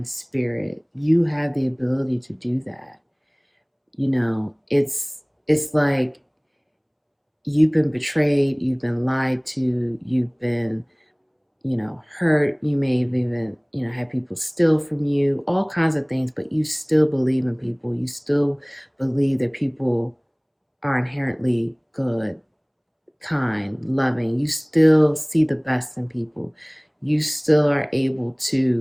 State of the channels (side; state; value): both; identical; correlation 1.00